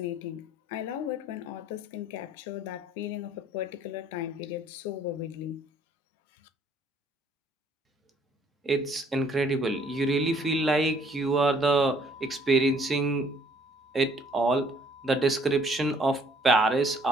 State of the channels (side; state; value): both; normal; correlation 0.61